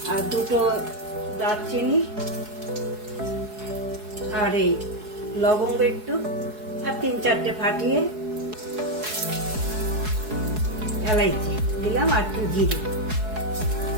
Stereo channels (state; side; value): late; left; 4.7 ms